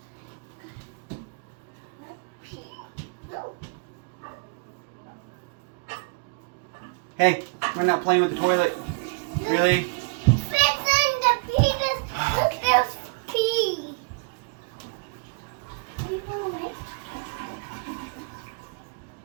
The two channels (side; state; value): left; quieter; 31.9 dB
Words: Hey, we're not playing with the toilet. Really? Fixing the penis. Look, there's pee.